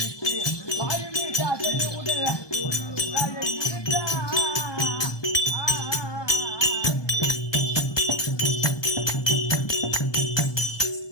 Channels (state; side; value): late; right; 1.2 ms